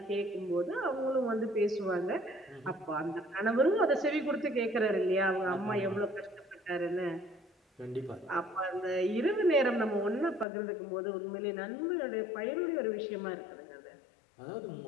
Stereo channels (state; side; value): drops out; right; at 10.5 s